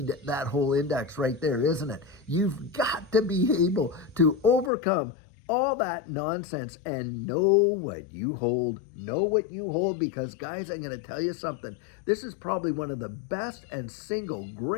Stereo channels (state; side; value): drops out; right; at 4.7 s